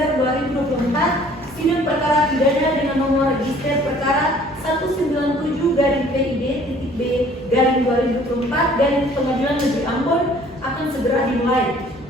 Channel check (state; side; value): normal; both; correlation 0.55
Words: 2024, sidang perkara pidana dengan nomor register perkara 197-PID-B-2024 Pengadilan Negeri Ambon akan segera dimulai.